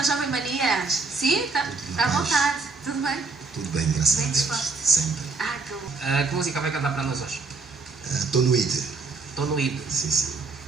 Jovem Manias. Sim, tá à vontade. Tudo bem? Tudo bem, graças Bem a Deus. disposto. Sempre. Ah, que bom. Que música vai cantar para nós hoje? Estou no ID. Estou no ID. Sim, sim.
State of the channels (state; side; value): quieter; left; 4.1 dB